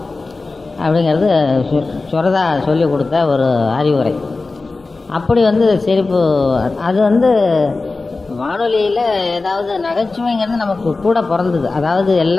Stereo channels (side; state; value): right; quieter; 3.6 dB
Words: அப்படிங்கிறது சுரதா சொல்லி கொடுத்த ஒரு அறிவுரை. அப்படி வந்து சிரிப்பு, அது வந்து வானொலியில் ஏதாவது நகைச்சுவைங்கிறது நமக்கு கூட பிறந்தது. அதாவது